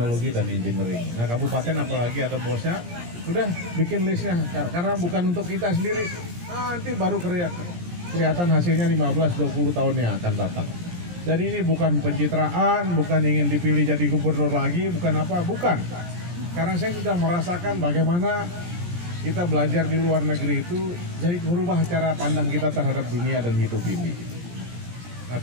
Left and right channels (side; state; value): left; late; 17 ms